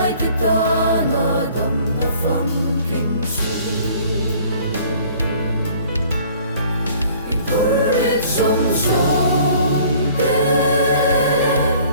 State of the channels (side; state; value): both; inverted; correlation -0.53